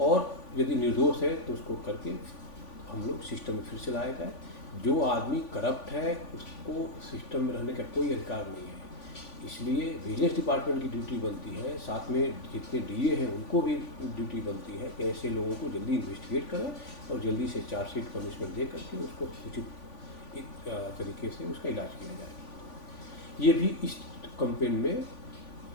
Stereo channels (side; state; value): right; late; 3.5 ms